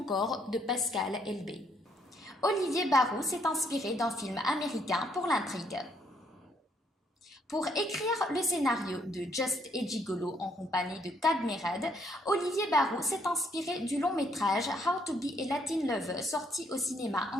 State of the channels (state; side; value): normal; both; correlation 0.69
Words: de Pascal Elbé. Olivier Barrault s'est inspiré d'un film américain pour l'intrigue. Pour écrire le scénario de Just et Gigolo en compagnie de Cadmerade, Olivier Barrault s'est inspiré du long-métrage How to be a Latin Lover sorti au cinéma